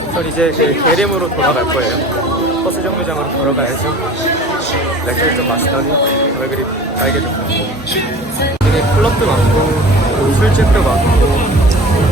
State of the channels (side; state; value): both; normal; correlation 0.41